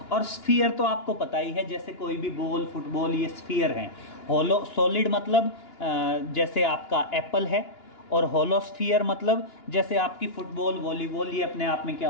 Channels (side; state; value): right; late; 2.9 ms